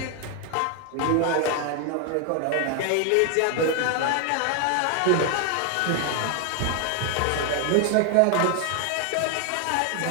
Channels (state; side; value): different; both; correlation 0.00